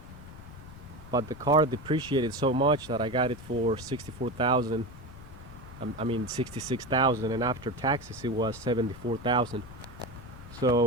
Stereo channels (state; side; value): noise; left; rumble, 17 dB below the sound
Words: But the car depreciated so much that I got it for 64,000. I mean 66,000, and after taxes it was 74,000.